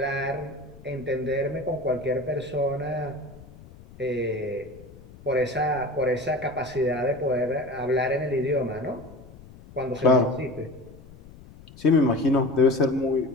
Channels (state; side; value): noise; left; rumble, 20 dB below the sound